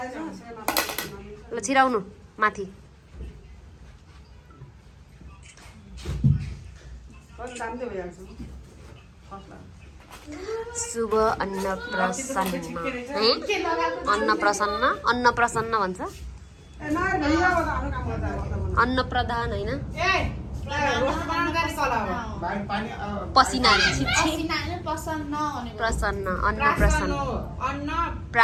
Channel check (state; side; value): identical; both; correlation 1.00